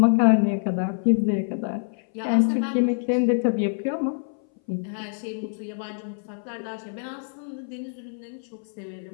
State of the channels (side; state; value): right; silent; 59 dB below the other